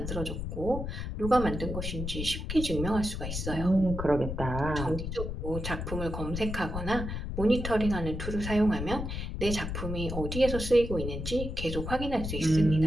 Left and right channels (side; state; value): left; noise; rumble, 5 dB below the sound